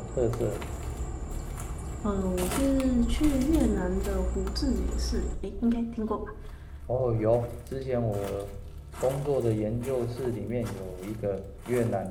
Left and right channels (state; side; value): identical; both; correlation 1.00